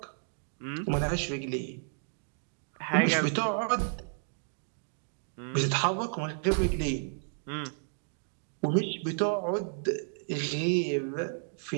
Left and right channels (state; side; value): silent; left; digital silence